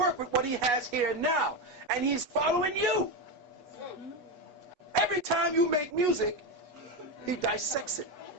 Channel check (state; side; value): late; left; 8.2 ms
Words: with what he has here now. And he's following you. Every time you make music, he dissects it.